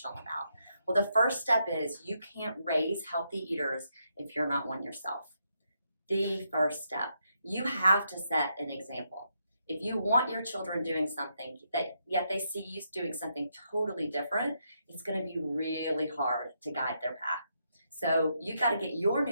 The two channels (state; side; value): inverted; both; correlation -0.79